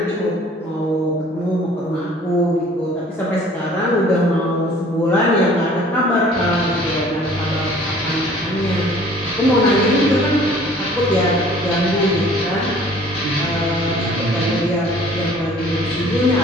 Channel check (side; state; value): both; normal; correlation 0.52